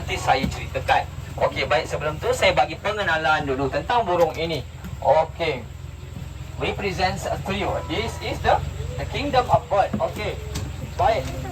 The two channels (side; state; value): both; identical; correlation 1.00